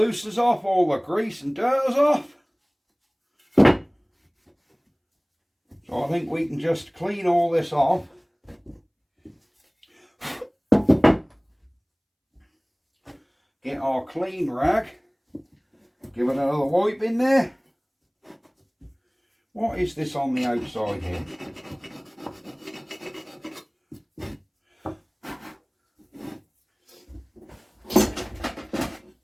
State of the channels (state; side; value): identical; both; correlation 1.00